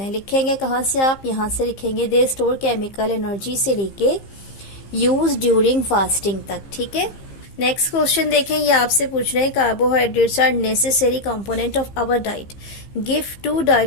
हैं। लिखेंगे कहाँ से आप, यहाँ से लिखेंगे दे स्टोर केमिकल एनर्जी से लेके यूज ड्यूरिंग फास्टिंग तक, ठीक है। नेक्स्ट क्वेश्चन देखें, ये आपसे पूछ रहे हैं carbohydrates are necessary component of our diet, give two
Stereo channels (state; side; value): late; right; 15 ms